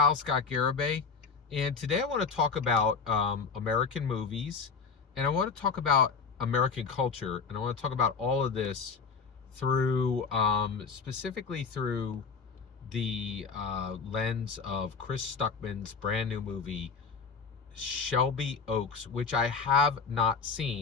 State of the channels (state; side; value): quieter; right; 5.5 dB